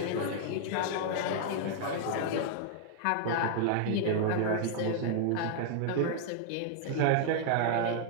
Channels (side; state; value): both; different; correlation -0.01